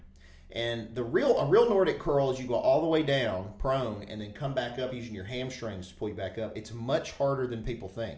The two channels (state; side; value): identical; both; correlation 1.00